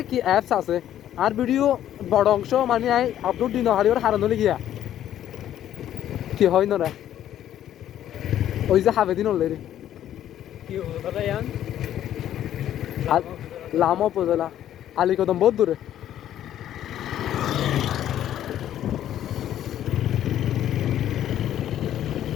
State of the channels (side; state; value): right; quieter; 11.5 dB